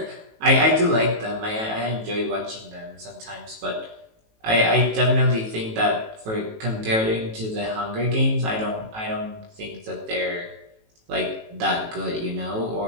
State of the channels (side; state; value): left; late; 18 ms